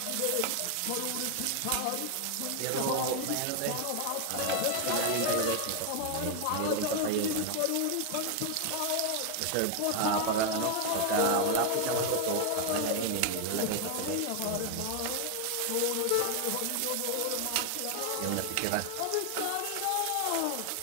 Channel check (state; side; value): different; both; correlation 0.00